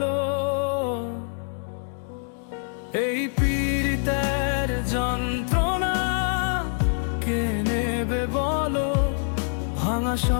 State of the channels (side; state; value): right; silent; digital silence